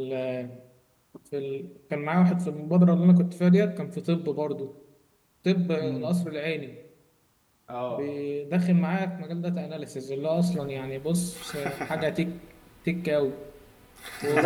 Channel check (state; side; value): identical; both; correlation 1.00